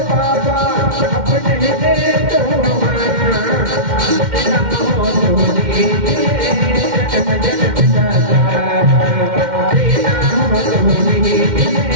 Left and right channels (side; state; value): left; late; 2.1 ms